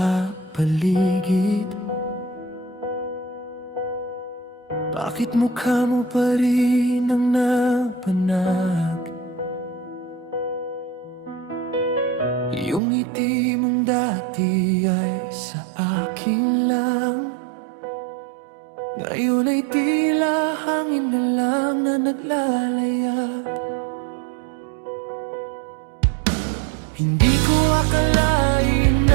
paligid, bakit mukha mo pa rin ang napanag? Yung ngiti mong dati ay sa akin lang, ngayon ay tila hangin na lang na naglalayag. Hindi ko akalain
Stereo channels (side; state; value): left; drops out; at 12.8 s